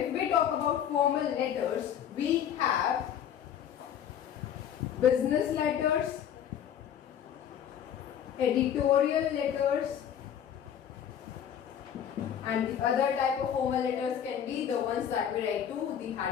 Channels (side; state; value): right; quieter; 9.3 dB